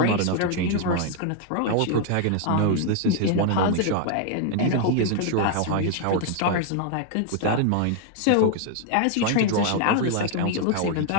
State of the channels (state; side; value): different; both; correlation 0.00